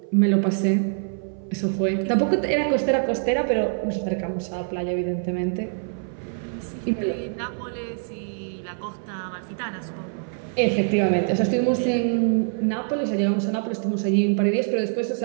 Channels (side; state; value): left; silent; 59 dB below the other